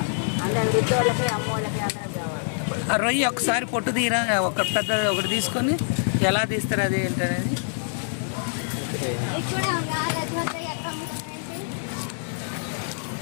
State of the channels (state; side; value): silent; right; digital silence